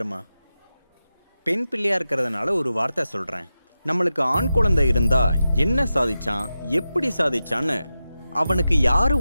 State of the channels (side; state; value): both; inverted; correlation -0.92